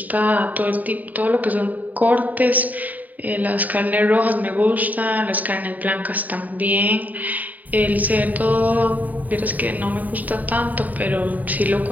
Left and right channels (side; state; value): left; late; 0.079 ms